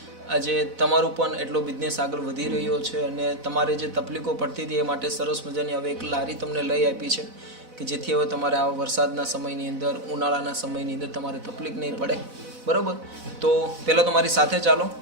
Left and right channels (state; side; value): late; left; 4.0 ms